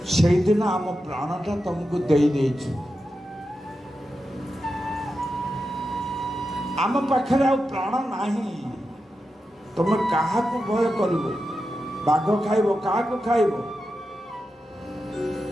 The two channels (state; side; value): normal; both; correlation 0.89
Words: ସେଇଦିନ ଆମ ପ୍ରାଣଟା ତମକୁ ଦେଇଦେଇଛୁ। ଆମ ପାଖରେ ଆଉ ପ୍ରାଣ ନାହିଁ। ତମେ କାହାକୁ ଭୟ କରିବ? ବାଘ ଖାଇବ, କାହାକୁ ଖାଇବ?